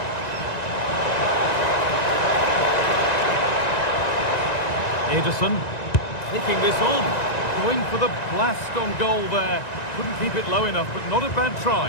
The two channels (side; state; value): right; late; 1.9 ms